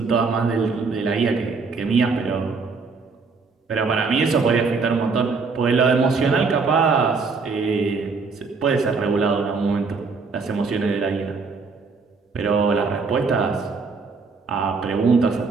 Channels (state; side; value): quieter; left; 4.6 dB